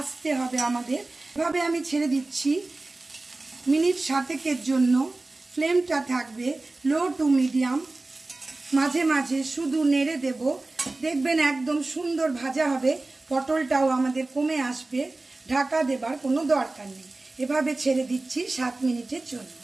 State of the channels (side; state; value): left; quieter; 3.1 dB